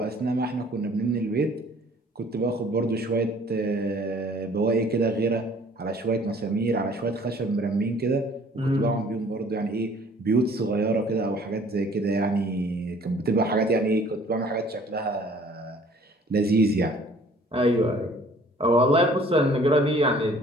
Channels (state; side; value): normal; both; correlation 0.54